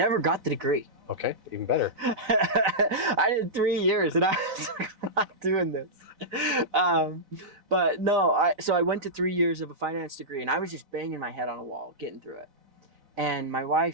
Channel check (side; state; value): left; late; 4.0 ms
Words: got the degree. Okay, even better. I did 3 years and I was like, I'm not doing this. But no, so I went to 3 years of a finance degree and I was just banging my head on a wall, getting through it. And my